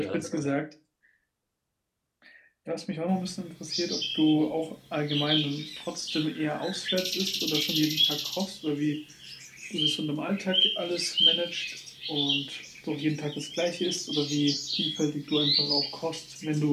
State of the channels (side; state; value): both; identical; correlation 1.00